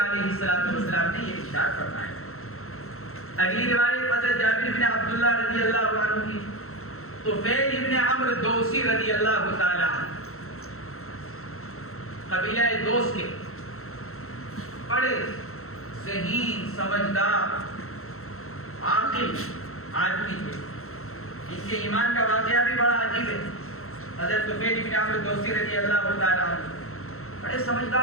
السلام نے یہ ارشاد فرمایا. اگلی روایت حضرت جابر بن عبداللہ رضی اللہ عنہ کی، طفیل ابن عمرو دوسی رضی اللہ تعالی عنہ، قبیلہ دوس کے بڑے ذہین سمجھدار عاقل آدمی تھے. ان کے ایمان کا واقعہ بھی بڑا عجیب ہے. حضرت طفیل ابن عمرو دوسی رضی اللہ تعالی عنہ بڑے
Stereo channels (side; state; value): right; late; 0.63 ms